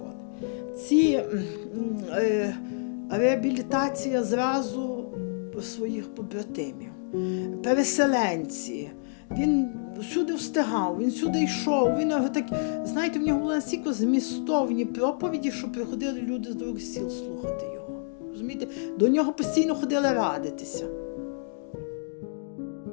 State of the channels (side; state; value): right; silent; digital silence